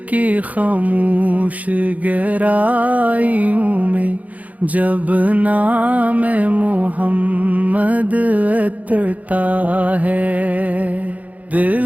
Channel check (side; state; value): left; late; 0.074 ms